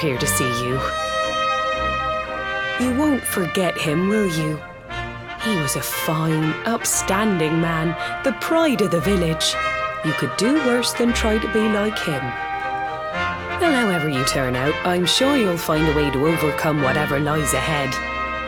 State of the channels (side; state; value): both; identical; correlation 1.00